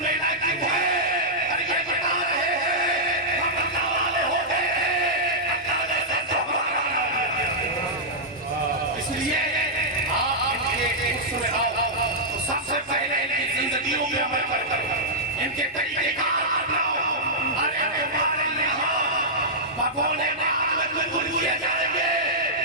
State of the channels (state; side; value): normal; both; correlation -0.10